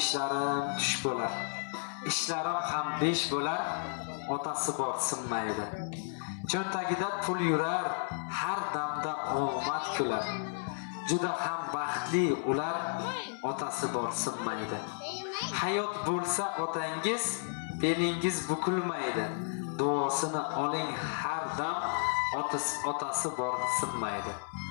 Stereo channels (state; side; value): silent; right; 56 dB below the other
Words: tush bo'lar. Ishlarim ham besh bo'lar, otasi bor sinmaydi. Cho'ntagida pul yurar, har damda omad kular. Juda ham baxtli ular, otasi bor sinmaydi. Hayot bo'lsa otangiz, belingiz bukilmaydi. Duosini oling har dam, otasi bor sinmaydi.